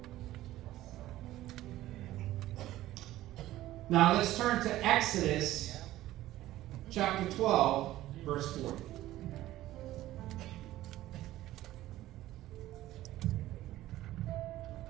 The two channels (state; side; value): quieter; left; 15.1 dB